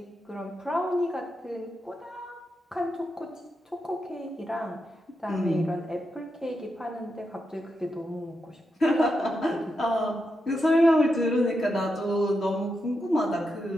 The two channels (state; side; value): normal; both; correlation 0.86